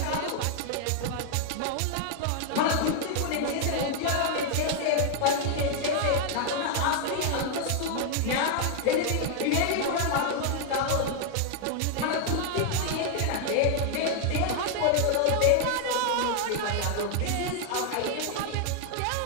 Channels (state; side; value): different; both; correlation 0.00